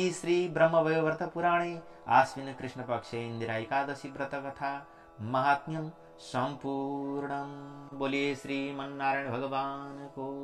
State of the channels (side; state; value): both; identical; correlation 1.00